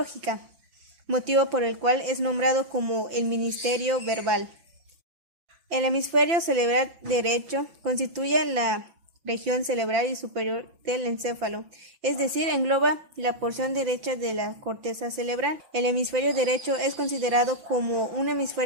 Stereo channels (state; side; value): late; left; 5.9 ms